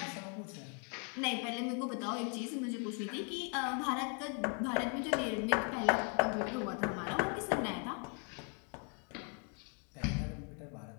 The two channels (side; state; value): right; quieter; 39.6 dB